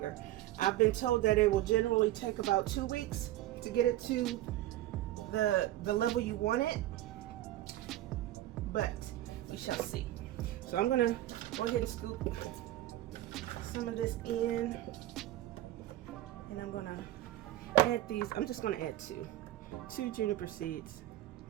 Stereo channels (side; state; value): left; quieter; 14.8 dB